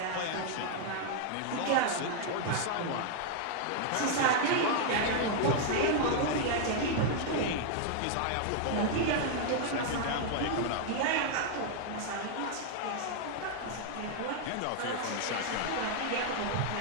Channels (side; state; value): both; different; correlation 0.00